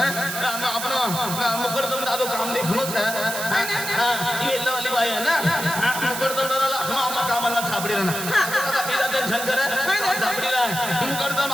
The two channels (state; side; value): noise; right; hiss, 5 dB below the sound